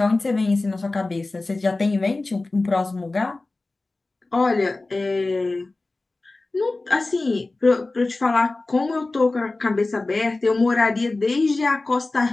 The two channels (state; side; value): quieter; right; 3.2 dB